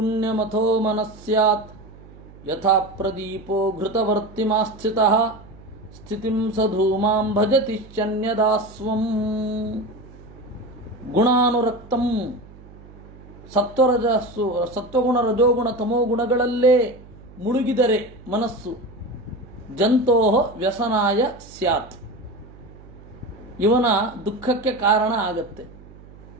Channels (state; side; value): noise; right; hum, 20 dB below the sound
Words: ಮನಸ್ಸ್ಯಾತ್ ಯಥಾ ಪ್ರದೀಪೋ ಘೃತವರ್ತಿಮಾಸ್ಥಿತಃ ಸ್ಥಿತಿಂ ಸಧೂಮಾಂ ಭಜತಿಶ್ಚನ್ಯದಾಸ್ವಂ. ಗುಣಾನುರಕ್ತಂ, ಸತ್ವಗುಣ ರಜೋಗುಣ ತಮೋ ಗುಣಗಳಲ್ಲೇ ಮುಳುಗಿದರೆ ಮನಸ್ಸು ಜಂತೋ ವ್ಯಸನಾಯ ಸ್ಯಾತ್, ಇವನ ದುಃಖಕ್ಕೆ ಕಾರಣ ಆಗತ್ತೆ.